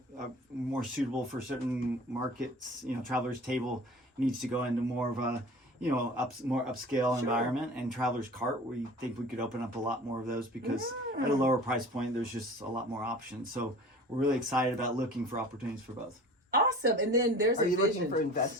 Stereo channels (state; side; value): normal; both; correlation 0.42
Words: more suitable for certain markets. Traveler's Table needs to go into more of a more upscale environment, and Traveler's Cart, we think we could open up a lot more of those because at a lower price point, there's just a lot more options. So we're really excited about looking for opportunities for both. Awesome. And then there's Are a you vision. looking for